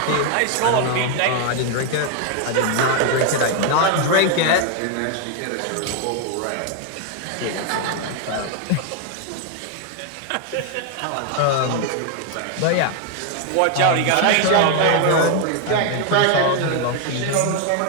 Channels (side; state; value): both; different; correlation 0.00